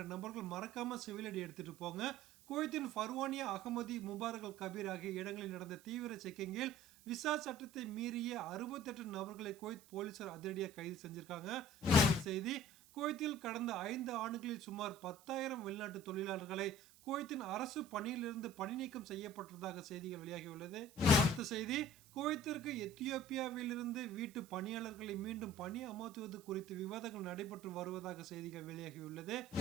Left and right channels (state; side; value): noise; right; hiss, 24 dB below the sound